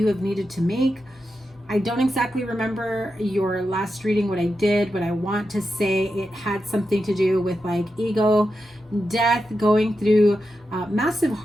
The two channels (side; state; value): both; normal; correlation 0.88